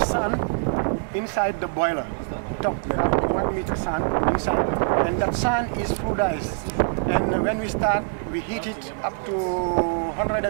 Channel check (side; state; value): left; silent; digital silence